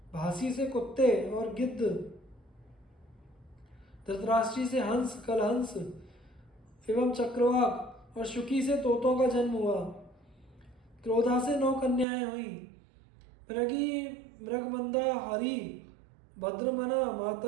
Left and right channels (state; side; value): drops out; left; at 12.1 s